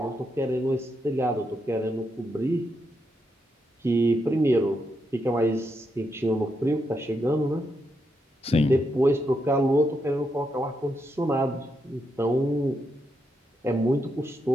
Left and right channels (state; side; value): normal; both; correlation 0.82